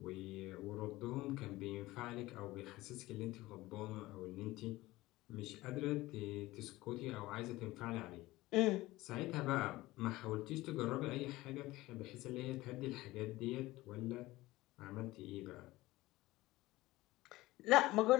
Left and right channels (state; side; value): quieter; right; 18.5 dB